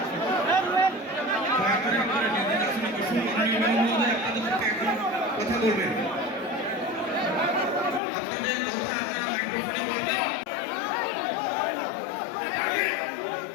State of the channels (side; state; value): right; drops out; at 8.0 s